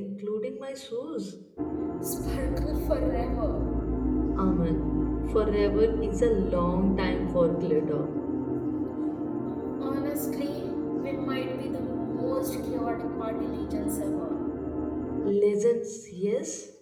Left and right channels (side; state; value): both; identical; correlation 1.00